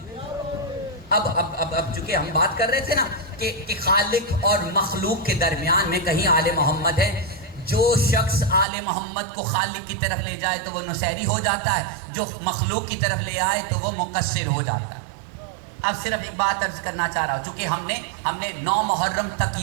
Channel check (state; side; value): drops out; left; at 8.7 s